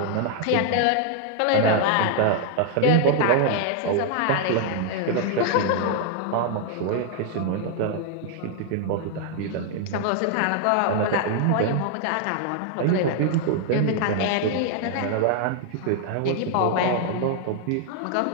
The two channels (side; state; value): both; different; correlation 0.00